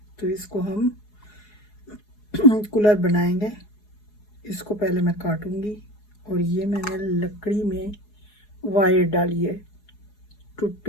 तो इसको हम कूलर बनाएंगे। इसको पहले मैं काटूंगी और ये मैंने लकड़ी में वायर डाली है।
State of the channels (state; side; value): late; right; 4.8 ms